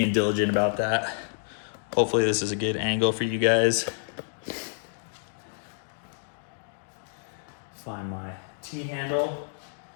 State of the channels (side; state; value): right; silent; digital silence